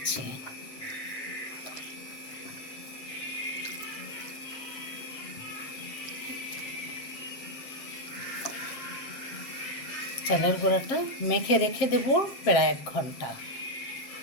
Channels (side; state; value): right; late; 7.6 ms